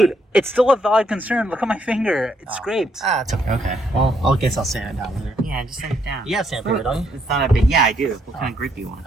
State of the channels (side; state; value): both; normal; correlation 0.73